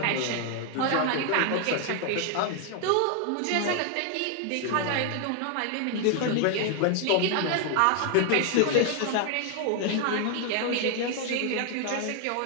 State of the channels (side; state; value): both; different; correlation 0.00